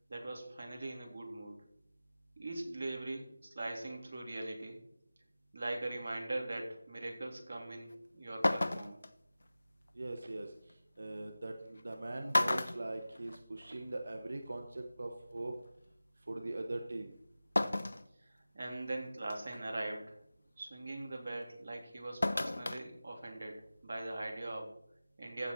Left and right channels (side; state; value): both; inverted; correlation -0.96